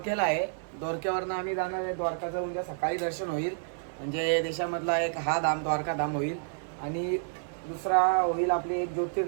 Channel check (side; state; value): left; silent; 58 dB below the other